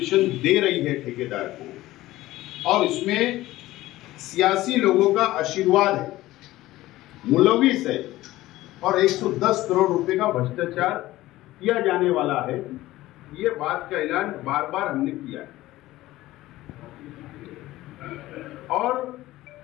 दे रही है ठेकेदार को, और इसमें सियासी लोगों का आशीर्वाद है, मुलविस है, और 110 करोड़ रुपए का भ्रष्टाचार किया जाने वाला है। ये बात का ऐलान बार बार हमने किया है। और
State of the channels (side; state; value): right; quieter; 16.7 dB